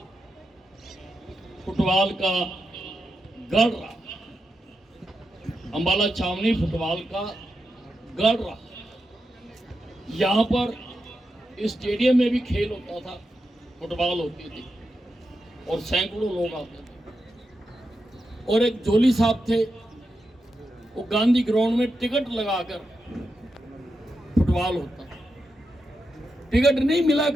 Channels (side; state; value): both; normal; correlation 0.87